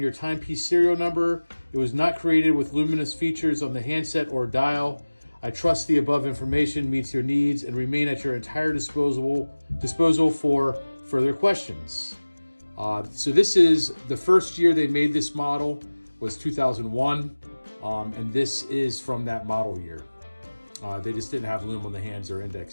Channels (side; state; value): both; inverted; correlation -1.00